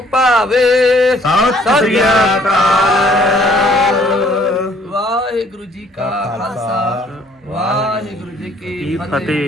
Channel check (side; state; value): both; normal; correlation 0.61